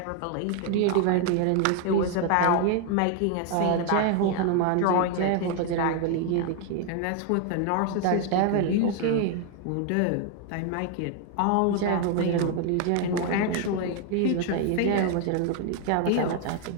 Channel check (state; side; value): different; both; correlation 0.00